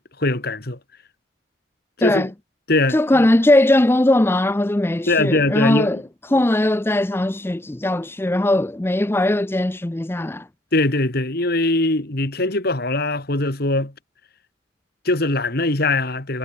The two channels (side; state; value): both; normal; correlation 0.67